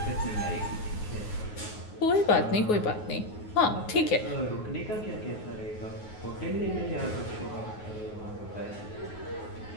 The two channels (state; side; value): late; right; 9.5 ms